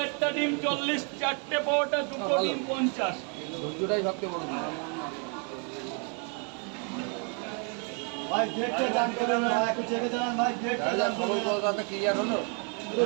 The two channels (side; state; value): left; quieter; 38.0 dB